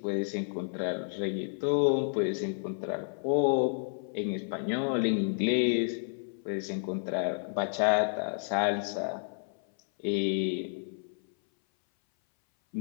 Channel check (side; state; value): right; silent; 57 dB below the other